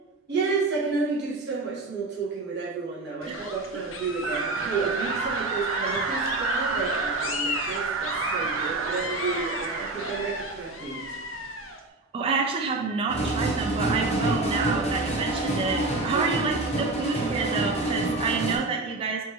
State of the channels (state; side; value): quieter; left; 3.2 dB